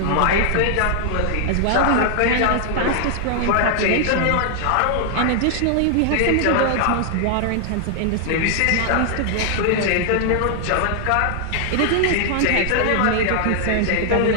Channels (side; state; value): both; different; correlation 0.00